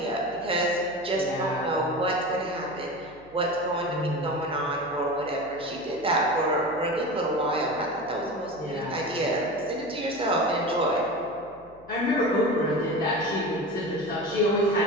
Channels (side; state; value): left; noise; hum, 25 dB below the sound